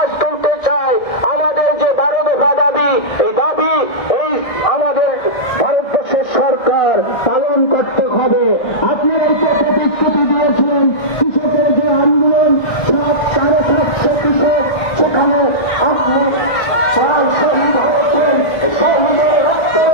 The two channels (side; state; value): right; late; 1.7 ms